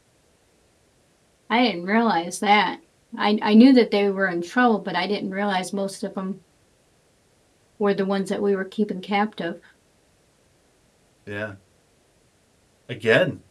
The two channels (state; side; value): identical; both; correlation 1.00